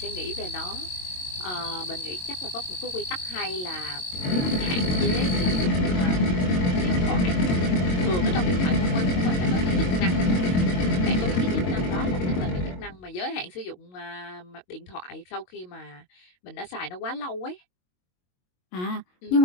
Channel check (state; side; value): late; right; 22 ms